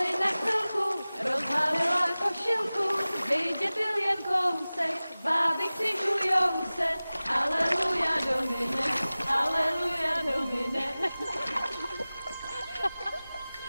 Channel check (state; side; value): inverted; both; correlation -0.98